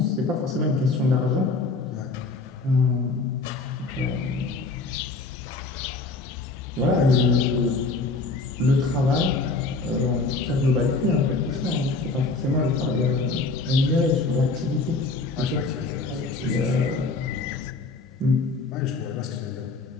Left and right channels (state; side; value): quieter; right; 3.8 dB